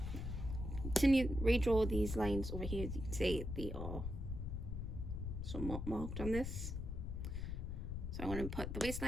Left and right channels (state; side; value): noise; left; rumble, 4 dB below the sound